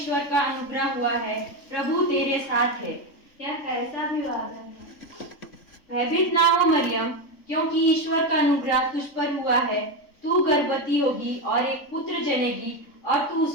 का अनुग्रह हुआ है, प्रभु तेरे साथ है। यह कैसा विवादन है? भयभीत ना हो मरियम, क्योंकि ईश्वर का अनुग्रह तुझ पर हुआ है। तू गर्भवती होगी और एक पुत्र जनेगी और तू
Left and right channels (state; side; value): late; right; 3.6 ms